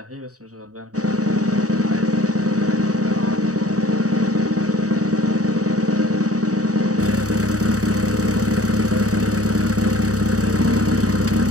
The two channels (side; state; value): left; late; 0.66 ms